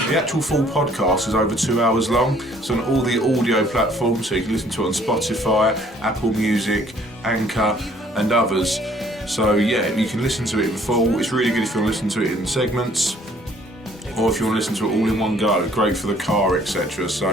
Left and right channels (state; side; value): normal; both; correlation 0.60